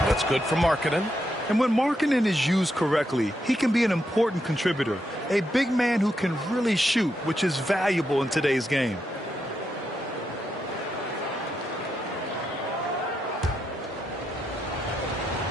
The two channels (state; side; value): normal; both; correlation 0.82